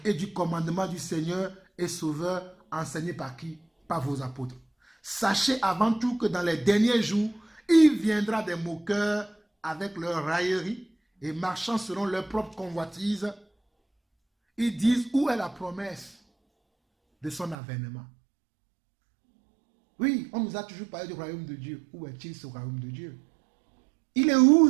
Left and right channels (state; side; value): drops out; left; at 17.6 s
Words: et du commandement du Seigneur et Sauveur enseigné par qui? Par vos apôtres. Sachez avant tout que dans les derniers jours, il viendra des moqueurs avec leur raillerie et marchant selon leur propre convoitise. Ils disent, où est la promesse de son avènement? Oui, on nous a toujours parlé du royaume de Dieu. Où est-il ce royaume de Dieu? Il est où